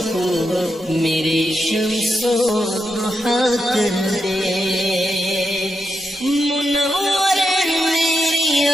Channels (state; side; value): normal; both; correlation 0.85